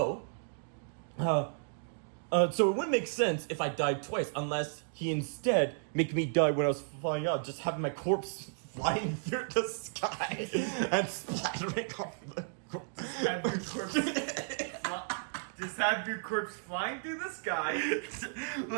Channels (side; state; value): left; silent; digital silence